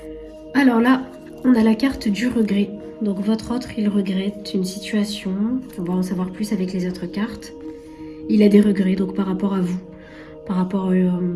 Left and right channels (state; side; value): identical; both; correlation 1.00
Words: Alors là, on a la carte du regret. Donc votre autre, il regrette une situation. On va en savoir plus avec les autres cartes. Il a des regrets donc par rapport à vous, par rapport à